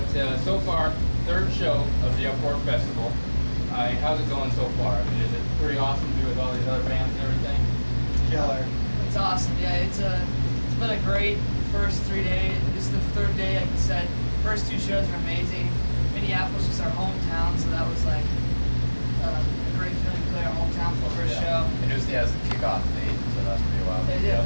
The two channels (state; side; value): inverted; both; correlation -1.00